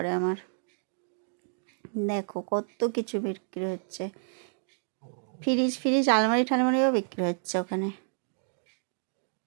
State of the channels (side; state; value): left; silent; digital silence